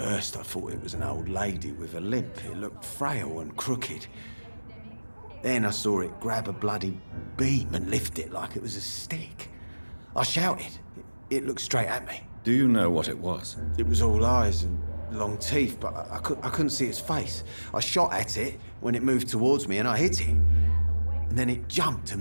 I thought it was an old lady with a limp. It looked frail and crooked. Then I saw it grab a bloody beam and lift it like it was a stick. I shouted. It looked straight at me. Do you know what it was? It was all eyes and long teeth, but I couldn't see its face. I shot at it when it moved towards me and I hit it. And then it jumped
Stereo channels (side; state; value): both; inverted; correlation -1.00